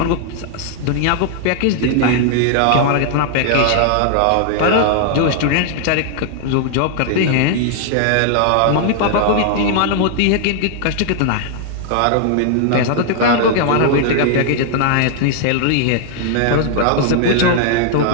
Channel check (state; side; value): different; both; correlation -0.01